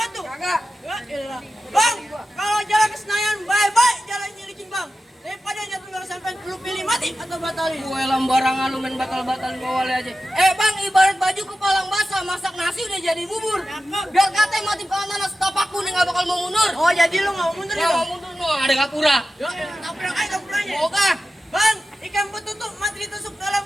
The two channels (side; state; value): both; normal; correlation 0.93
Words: Kagak. Ya elah. Bang, kalau jalan ke Senayan baik-baik jalannya licin bang. Daripada jatuh nggak sampai lu pilih mati atau batalin. Gue lambarangan lu main batal-batalin Pak Wali aja. Bang, ibarat baju kepalang basah, masak nasi udah jadi bubur. Biar katanya mati kanan setapakku nih nggak bakal mau mundur. Oh jadi lu nggak mau mundur ya Nggak bang? mau mundur, no, ada kapura. Ya tabrak aja tabrakannya. Oke. Bang, ikan betutuk mati ditusuk dalam